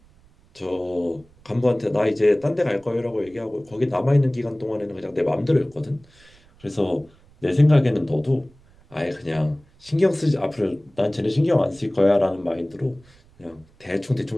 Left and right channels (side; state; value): right; noise; rumble, 29 dB below the sound